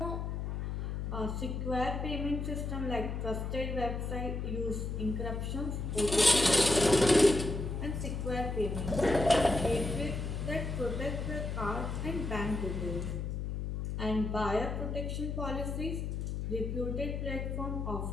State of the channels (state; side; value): noise; left; hum, 3 dB below the sound